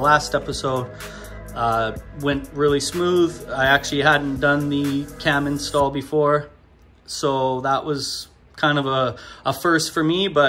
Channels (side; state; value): both; identical; correlation 1.00